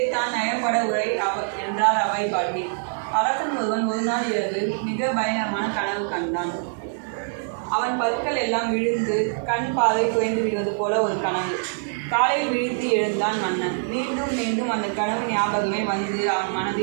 நயப்பட உரை என்றார் அவை பாட்டி. அரசன் ஒருவன் ஒரு நாள் இரவு மிக பயங்கரமான கனவு கண்டான். அவன் பற்கள் எல்லாம் விழுந்து கண் பார்வை குறைந்து விடுவது போல ஒரு கனவு. காலையில் விழித்து எழுந்தான் மன்னன். மீண்டும் மீண்டும் அந்த கனவு ஞாபகமே வந்து அவன்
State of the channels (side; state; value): left; silent; digital silence